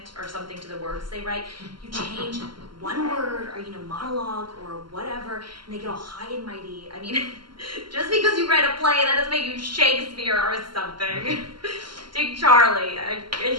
or something to the words they write. You change one word or monologue or whatever, and they get all high and mighty. I mean, just because you write a play, that doesn't make you Shakespeare or something. Take Charlie.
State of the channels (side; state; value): left; late; 0.72 ms